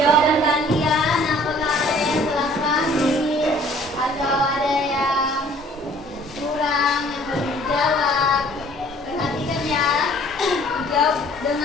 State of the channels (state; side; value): normal; both; correlation 0.55